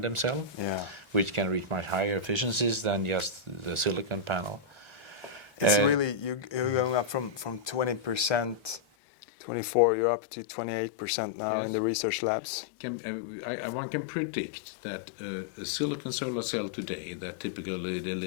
cell, which can reach much higher efficiencies than just the silicon panel. It's really you're going up from 20%. 24, you're up to 28% now in the research labs. One can predict that a silicon solar cell today that typically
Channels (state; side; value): drops out; right; at 8.8 s